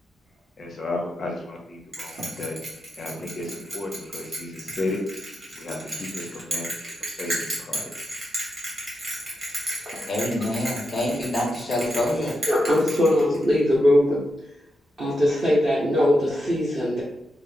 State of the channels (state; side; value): normal; both; correlation 0.86